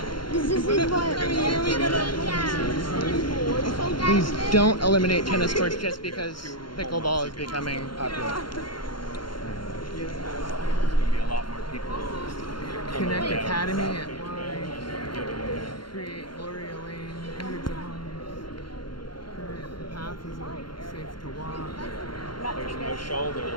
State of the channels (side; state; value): right; late; 0.72 ms